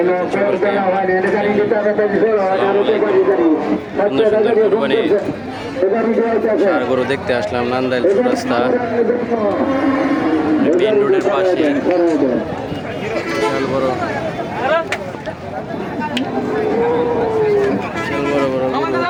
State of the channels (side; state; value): both; identical; correlation 1.00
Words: কুরবানির ষাঁড় গরু দেখতে আসলাম নান্দাইল রাস্তা মেন রোডের পাশে। বিশাল বড় গরু